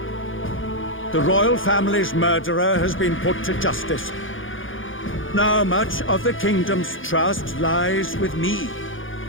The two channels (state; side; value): late; right; 0.58 ms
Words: The royal family's murderer has been put to justice. Now much of the kingdom's trust lies with me.